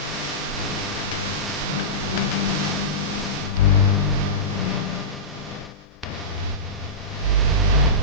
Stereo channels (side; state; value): both; normal; correlation -0.17